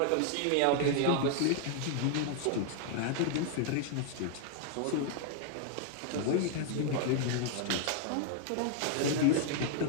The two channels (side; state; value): both; different; correlation 0.00